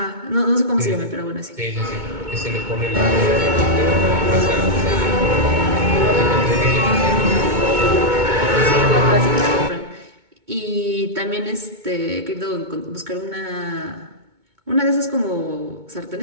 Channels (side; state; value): left; late; 2.2 ms